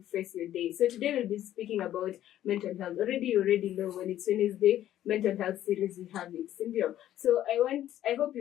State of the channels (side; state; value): right; quieter; 12.3 dB